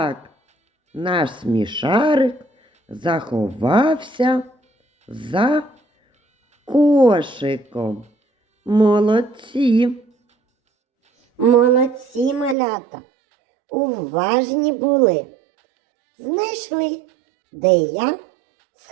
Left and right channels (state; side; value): drops out; left; at 12.6 s